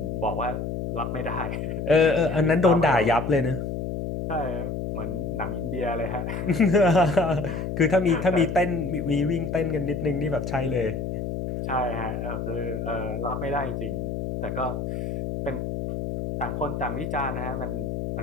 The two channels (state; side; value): noise; left; hum, 3 dB below the sound